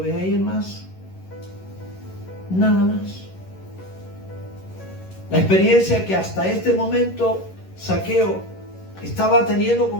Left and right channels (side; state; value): right; late; 11 ms